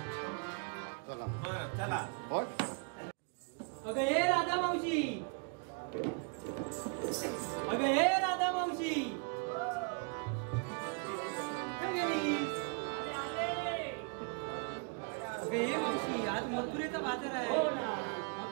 बरं चला. अगं हे राधा मावशी, अगं हे राधा मावशी, अगं हे मावशी, आज मथुरेचा बाजार आहे. हो ना.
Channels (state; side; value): quieter; left; 38.1 dB